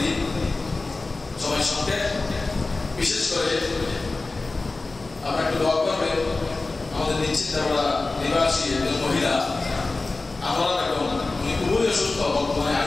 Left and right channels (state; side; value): quieter; right; 3.4 dB